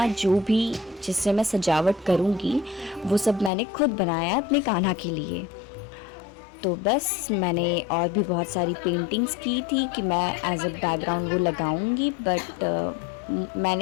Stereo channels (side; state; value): right; drops out; at 3.5 s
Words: जो भी जिससे मैं सजावट करूँगी वो सब मैंने खुद बनाया अपने कान्हा के लिए। तो बस मैंने और भी बहुत सारी पेंटिंग्स की थी कि मैं एज अ बैकग्राउंड वो लगाऊंगी, बट